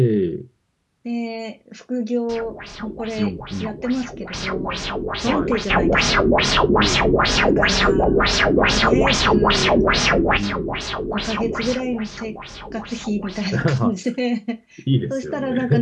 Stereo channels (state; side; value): identical; both; correlation 1.00